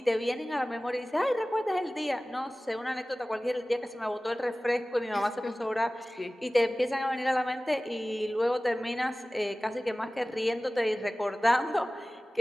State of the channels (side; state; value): both; normal; correlation 0.98